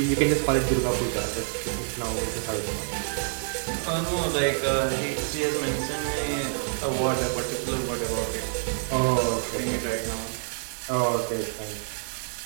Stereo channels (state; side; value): silent; left; digital silence